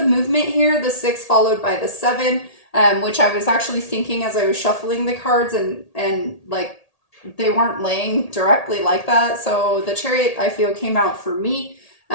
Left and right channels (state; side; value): late; right; 1.8 ms